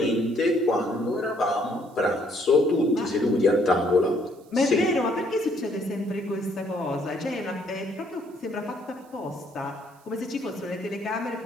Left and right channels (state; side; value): noise; right; hiss, 30 dB below the sound